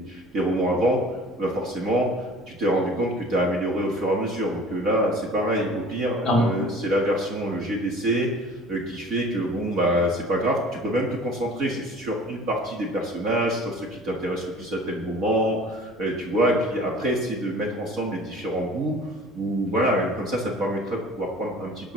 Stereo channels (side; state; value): both; normal; correlation 0.46